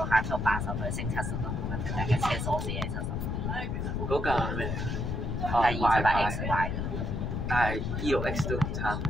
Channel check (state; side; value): noise; left; rumble, 1 dB below the sound